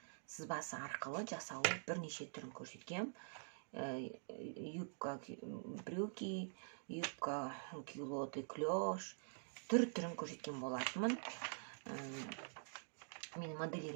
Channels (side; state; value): left; silent; digital silence